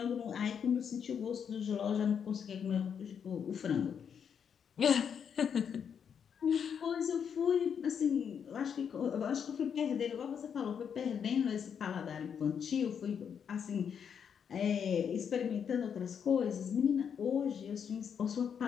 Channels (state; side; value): quieter; right; 7.5 dB